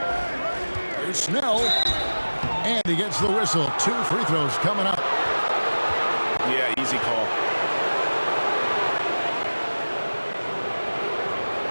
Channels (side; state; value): both; inverted; correlation -1.00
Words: Here's Snell. And he gets the whistle. 2 free throws coming up. Yeah, easy call.